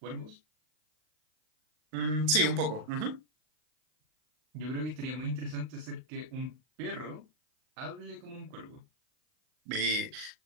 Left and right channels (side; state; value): left; late; 39 ms